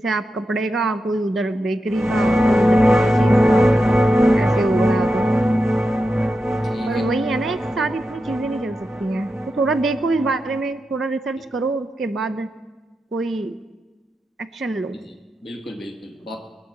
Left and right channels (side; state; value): both; normal; correlation 0.89